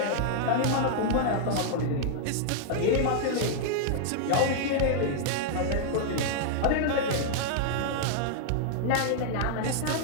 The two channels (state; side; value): different; both; correlation -0.01